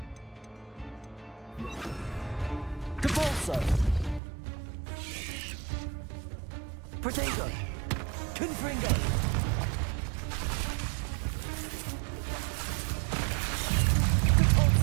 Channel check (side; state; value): left; drops out; at 4.2 s